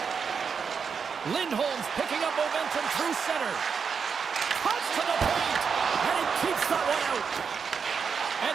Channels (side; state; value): left; quieter; 6.1 dB